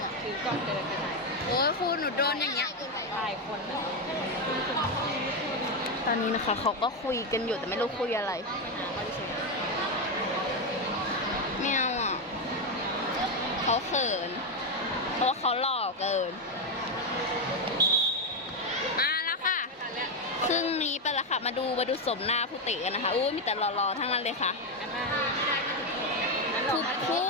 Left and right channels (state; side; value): normal; both; correlation 0.07